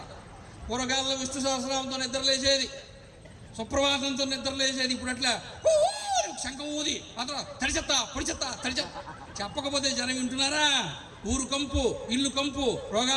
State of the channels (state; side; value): identical; both; correlation 1.00